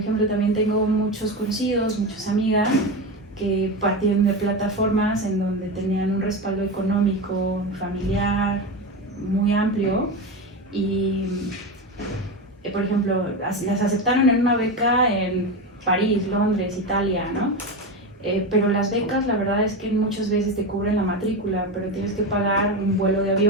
también tengo muchos conocidos, muchas amigas que partieron de plataformas en donde tenían un respaldo económico, familiar, muy amplio y, por ejemplo, las aceptaron en una beca en París, Londres, Italia, ¿no? Pero las becas, la verdad es que muchas veces te cubren la matrícula, pero tienes que pagar un vuelo de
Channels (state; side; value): normal; both; correlation 0.19